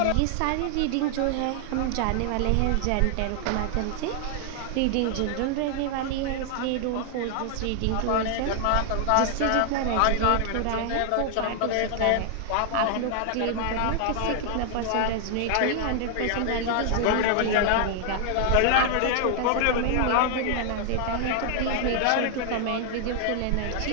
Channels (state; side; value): different; both; correlation 0.00